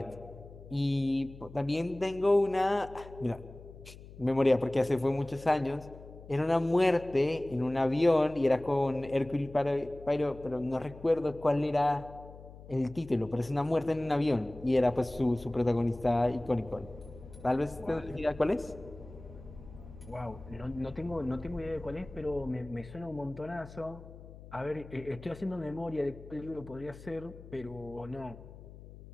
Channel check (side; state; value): left; noise; hum, 17 dB below the sound